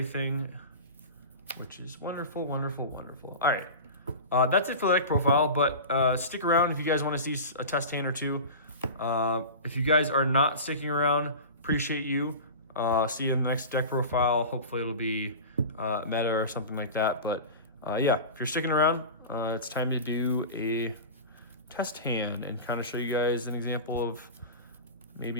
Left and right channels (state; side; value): inverted; both; correlation -0.31